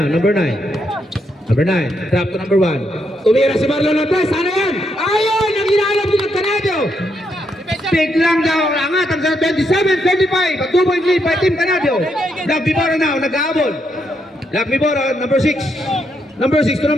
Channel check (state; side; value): normal; both; correlation 0.78